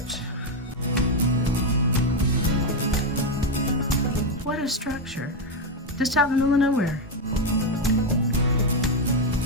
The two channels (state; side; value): normal; both; correlation 0.06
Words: What a structure. Just out in the middle of nowhere.